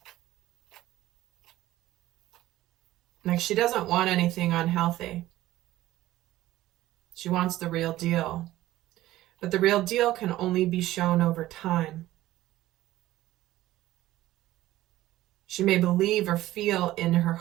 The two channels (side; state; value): left; quieter; 15.5 dB